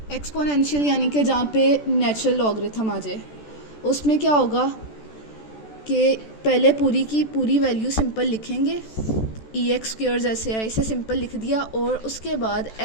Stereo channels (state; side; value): late; right; 14 ms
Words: एक्सपोनेंशियल यानी कि जहाँ पे नेचुरल लॉगरिथम आ जाए, उसमें क्या होगा कि पहले पूरी की पूरी वैल्यू सिंपल लिखेंगे, एक्स स्क्वायर जैसे है इसे सिंपल लिख दिया, और उसके बाद